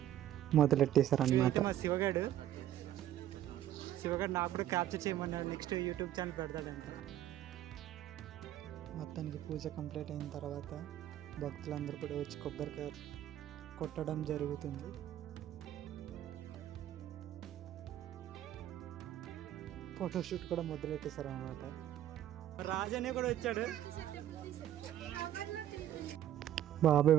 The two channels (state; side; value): quieter; left; 11.9 dB